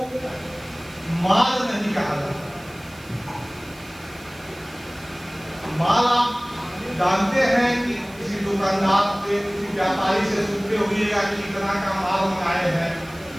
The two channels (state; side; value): noise; right; hiss, 23 dB below the sound